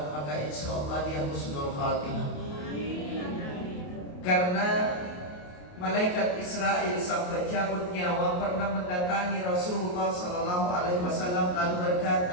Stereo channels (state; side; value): late; right; 28 ms